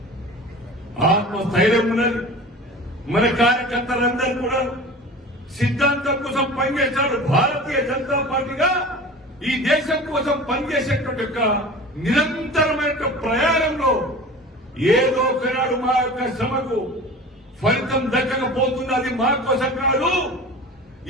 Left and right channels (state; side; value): normal; both; correlation 0.37